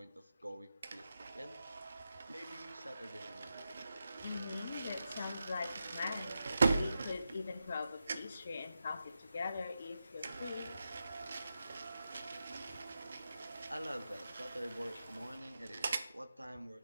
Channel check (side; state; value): both; inverted; correlation -0.89